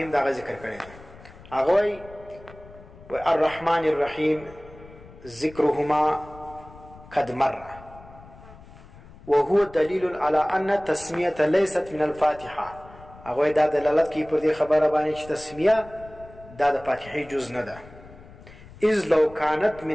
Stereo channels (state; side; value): noise; left; rumble, 20 dB below the sound